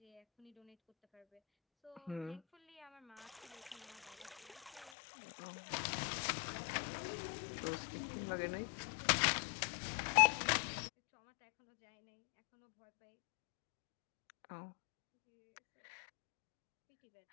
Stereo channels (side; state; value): right; drops out; at 4.9 s